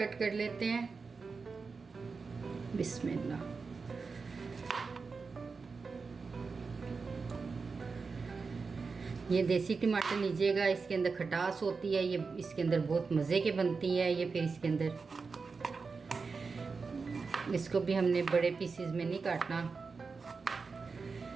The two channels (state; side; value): quieter; left; 4.7 dB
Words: कर लेते हैं। बिस्मिल्लाह। ये देसी टमाटर लीजिएगा, इसके अंदर खटास होती है, ये इसके अंदर बहुत मज़े के बनती है। ये फिर इसके अंदर इसको भी हमने बड़े पीसेस में नहीं काटना,